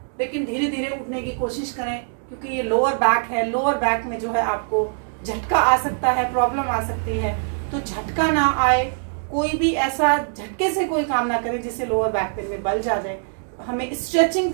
लेकिन धीरे धीरे उठने की कोशिश करें क्योंकि ये लोअर बैक है। लोअर बैक में जो है आपको झटका आ सकता है, प्रॉब्लम आ सकती है। तो झटका ना आए, कोई भी ऐसा झटके से कोई काम ना करें जिससे लोअर बैक पेन में बल जा जाए। हमें स्ट्रेचिंग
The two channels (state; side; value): silent; left; digital silence